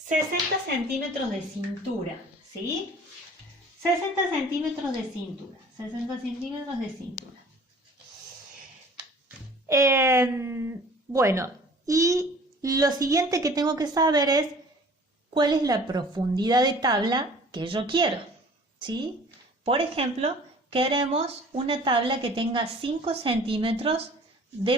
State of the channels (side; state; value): both; normal; correlation 0.48